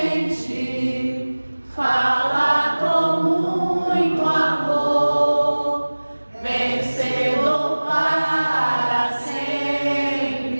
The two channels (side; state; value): both; inverted; correlation -1.00